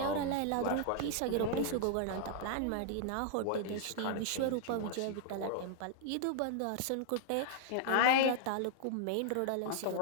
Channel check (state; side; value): different; both; correlation -0.01